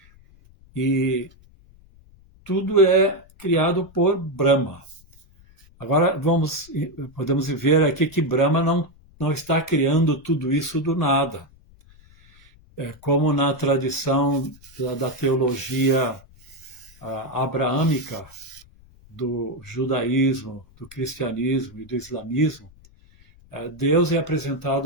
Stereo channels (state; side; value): noise; left; rumble, 26 dB below the sound